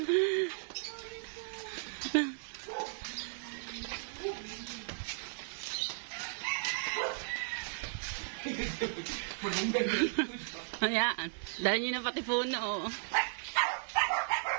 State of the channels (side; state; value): left; silent; 54 dB below the other